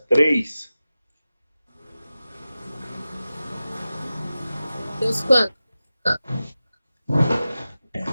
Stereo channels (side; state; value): both; inverted; correlation -0.95